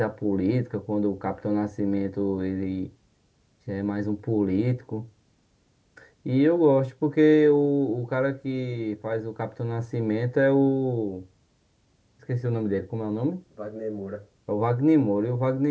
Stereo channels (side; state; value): both; identical; correlation 1.00